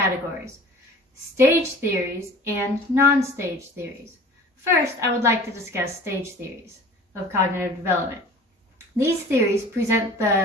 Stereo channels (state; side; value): normal; both; correlation 0.44